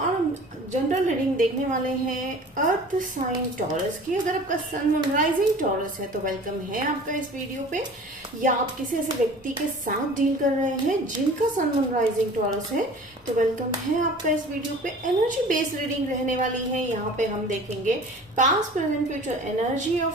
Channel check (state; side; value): normal; both; correlation 0.44